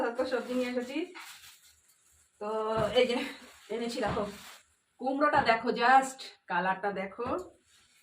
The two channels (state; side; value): identical; both; correlation 1.00